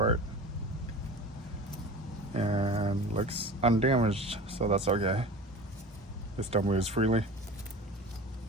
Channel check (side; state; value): both; normal; correlation 0.36